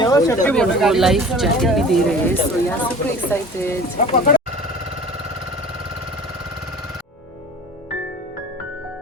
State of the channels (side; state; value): both; normal; correlation 0.42